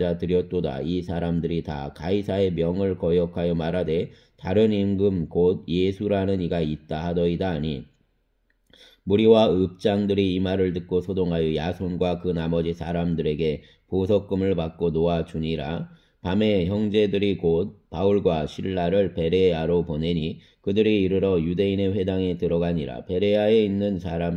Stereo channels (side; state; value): both; identical; correlation 1.00